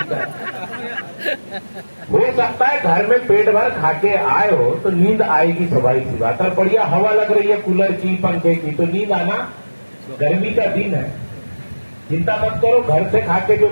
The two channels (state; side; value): inverted; both; correlation -1.00